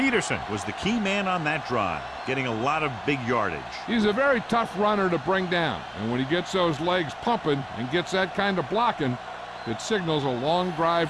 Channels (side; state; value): both; identical; correlation 1.00